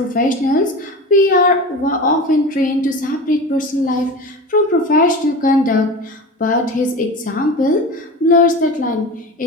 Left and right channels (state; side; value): normal; both; correlation 0.30